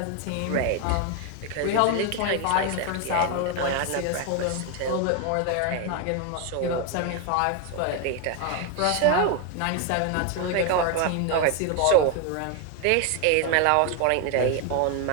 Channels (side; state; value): both; different; correlation 0.01